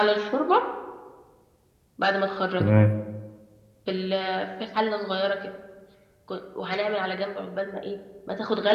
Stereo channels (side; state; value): both; identical; correlation 1.00